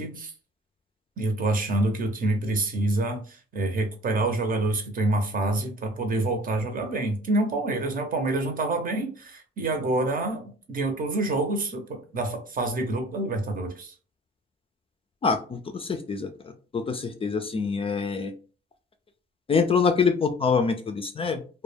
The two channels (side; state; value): both; normal; correlation 0.48